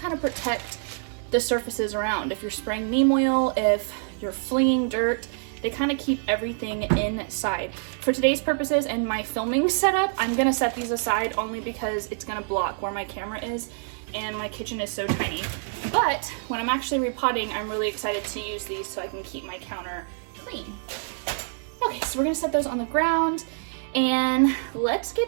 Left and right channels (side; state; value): left; silent; digital silence